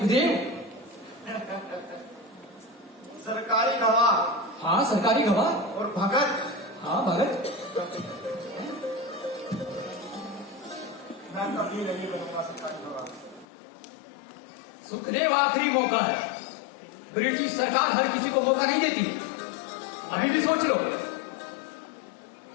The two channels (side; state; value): right; drops out; at 13.5 s